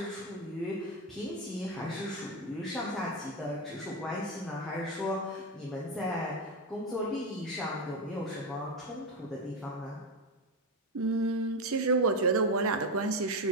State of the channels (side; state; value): both; normal; correlation 0.12